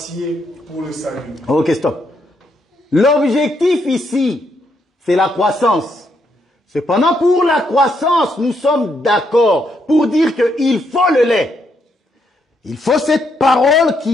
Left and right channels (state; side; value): normal; both; correlation 0.76